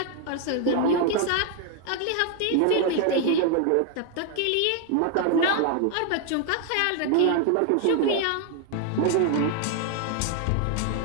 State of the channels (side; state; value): both; different; correlation 0.01